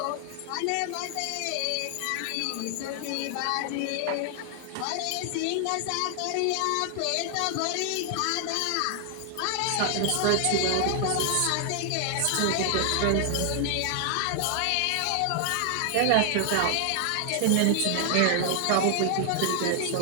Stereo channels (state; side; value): different; both; correlation 0.00